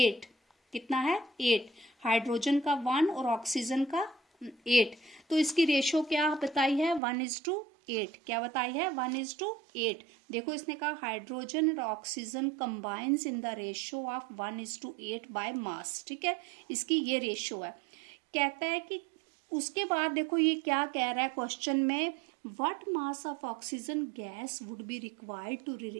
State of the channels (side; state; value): left; drops out; at 7.0 s